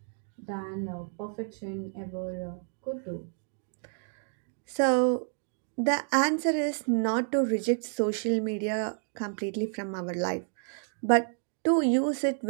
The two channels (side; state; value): left; silent; 58 dB below the other